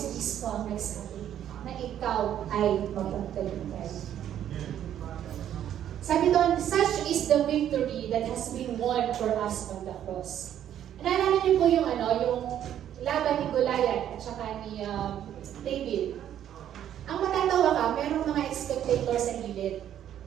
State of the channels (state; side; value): quieter; left; 10.6 dB